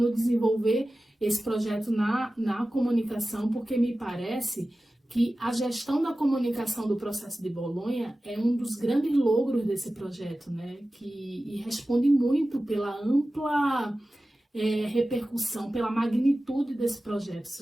desenvolver esse projeto na comunicação, porque me parece que a gestão da comunicação do processo de Bolonha é um dos grandes logros desse projeto, né? E responde muito pela ampla repercussão, pela magnitude desse projeto, ou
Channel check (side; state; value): both; normal; correlation 0.95